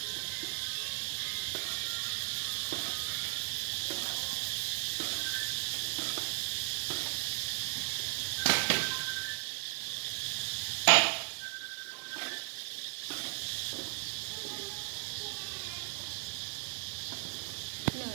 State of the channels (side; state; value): left; silent; digital silence